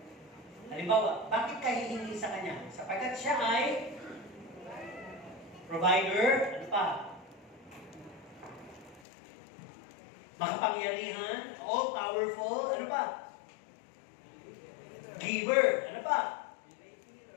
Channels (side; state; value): right; drops out; at 9.0 s